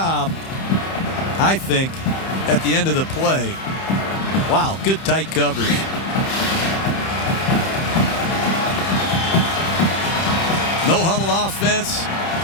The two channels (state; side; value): late; right; 31 ms